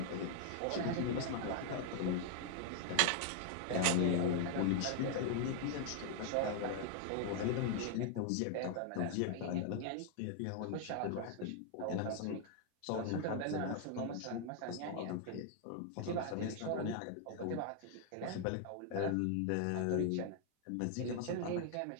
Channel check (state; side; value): different; both; correlation 0.00